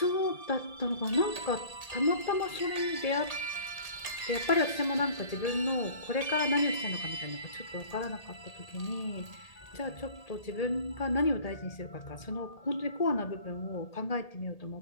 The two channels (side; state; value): right; late; 1.8 ms